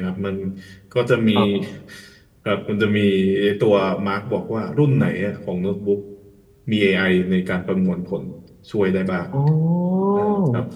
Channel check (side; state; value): both; identical; correlation 1.00